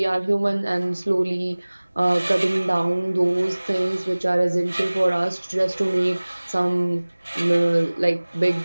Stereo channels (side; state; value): both; inverted; correlation -1.00